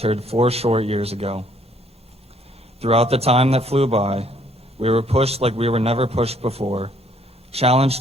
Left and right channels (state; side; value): normal; both; correlation 0.64